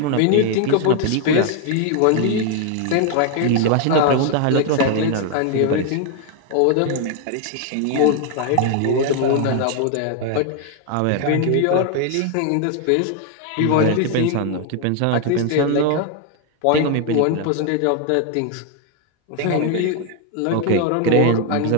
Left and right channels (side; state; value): both; different; correlation 0.00